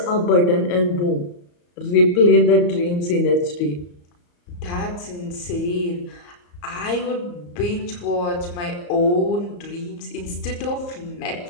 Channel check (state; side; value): late; right; 34 ms